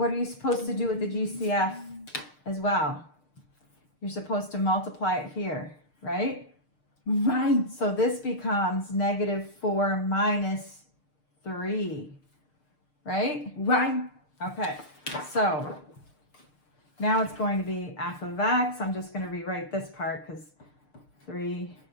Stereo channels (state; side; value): late; right; 6.7 ms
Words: are you supposed to do with the GCF as well? You're supposed to multiply it here, right? Right. So this becomes negative 4 minus 3, right? Right. Okay, so now it's going to be f of x. I'm just going to rewrite this part because